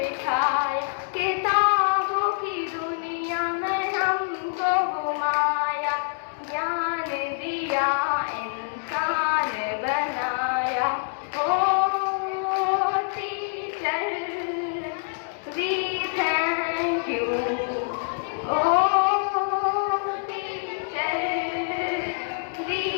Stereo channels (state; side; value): silent; right; 58 dB below the other